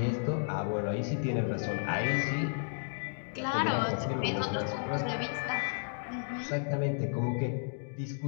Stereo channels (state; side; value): silent; right; digital silence